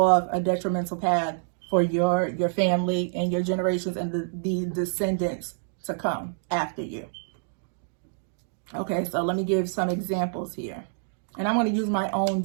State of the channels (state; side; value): silent; left; digital silence